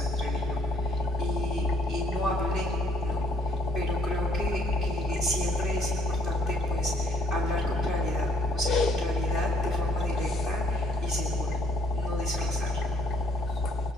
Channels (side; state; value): both; normal; correlation 0.64